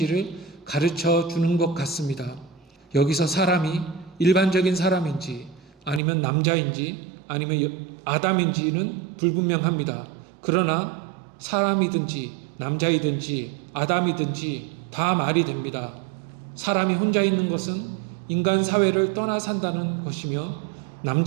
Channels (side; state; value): left; drops out; at 6.0 s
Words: 가르쳐 주는 것 같습니다. 여기서 사람이 일반적인 사람인지 아니면 남자인지 아니면 아담인지는 불분명합니다. 그러나 사람이든지 남자이든지 아담이든지 다 말이 됩니다. 사람이 혼자 있는 것은 인간 사회를 떠나 산다는 것이며